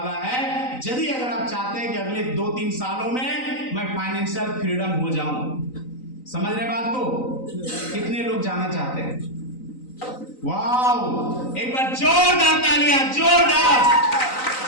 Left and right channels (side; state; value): right; late; 3.9 ms